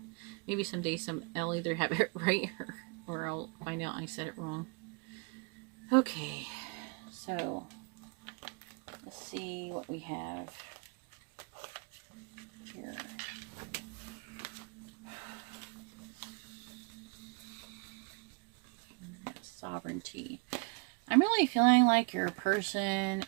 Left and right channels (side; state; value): left; quieter; 32.8 dB